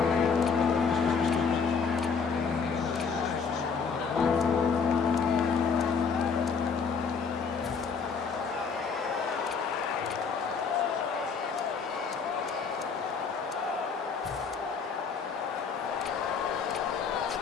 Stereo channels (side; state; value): right; quieter; 5.6 dB